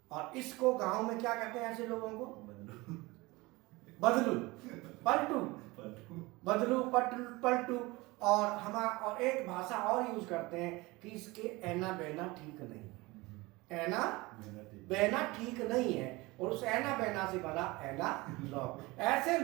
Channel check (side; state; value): left; quieter; 22.3 dB